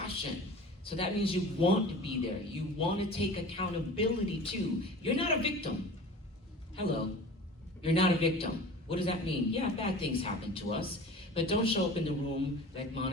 So that means you want to be there. You want to take accountability too. You're not a victim. Hello. You're not a victim. What does that mean? Yeah, bad things happen to us. But don't show up in the room, like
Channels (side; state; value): both; normal; correlation 0.39